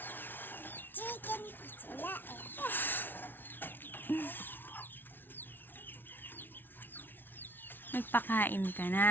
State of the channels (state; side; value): late; right; 0.097 ms